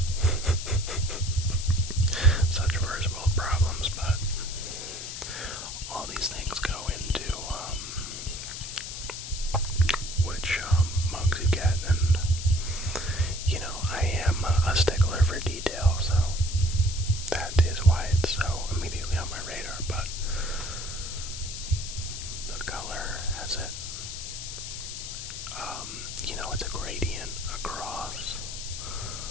such first world problems, but all these things go into which mugs you get, and you know, I am a stickler for detail, so that is why it's so immediately on my radar. But the color has it, you know, it's a gradient across,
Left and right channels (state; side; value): noise; left; hiss, 8 dB below the sound